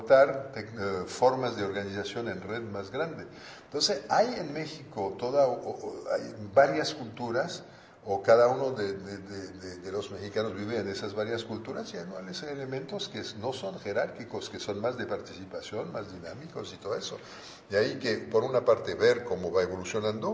formas de organización en red más grande. Entonces, hay en México hay varias culturas, o cada uno de los mexicanos vive en esas varias culturas, y hay elementos que no son jerárquicos, que son más de participación, más dinámicos y todo eso. De ahí que, por una parte, ver cómo va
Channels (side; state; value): both; identical; correlation 1.00